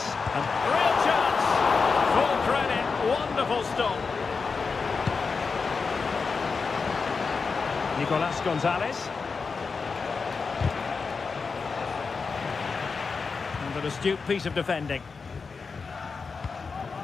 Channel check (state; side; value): quieter; right; 4.9 dB